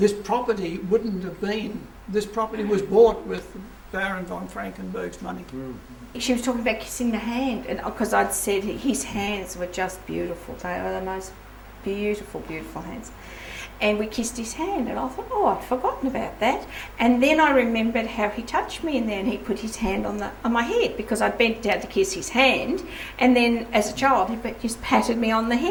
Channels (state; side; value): identical; both; correlation 1.00